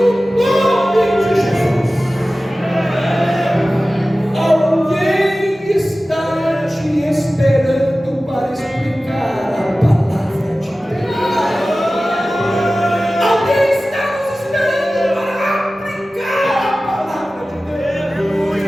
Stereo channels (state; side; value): normal; both; correlation 0.96